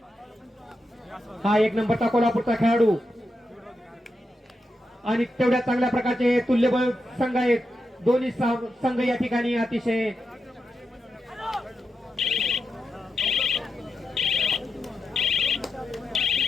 हा एक नंबरचा कोल्हापूरचा खेळाडू आणि तेवढ्या चांगल्या प्रकारचे तुल्यबळ संघ आहेत दोन्ही संघ या ठिकाणी अतिशय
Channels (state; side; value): normal; both; correlation 0.87